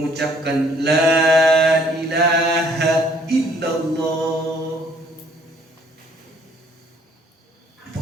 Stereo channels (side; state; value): both; normal; correlation 0.61